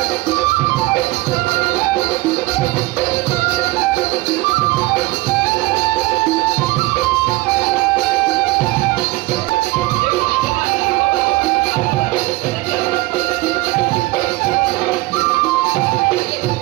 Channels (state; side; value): quieter; left; 20.4 dB